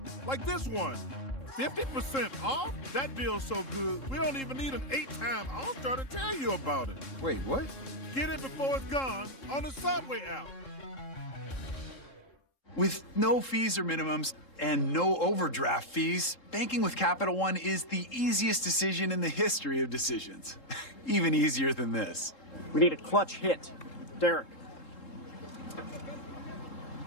like this one. 50% off? That deal's so good, we don't even need an 8-time All-Star to tell you about it. Wait, what? Get it before it's gone on the Subway app. With no fees or minimums and no overdraft fees, banking with Capital One is the easiest decision in the history of decisions. Even easier than this. We need a clutch hit. Derek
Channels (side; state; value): right; late; 3.7 ms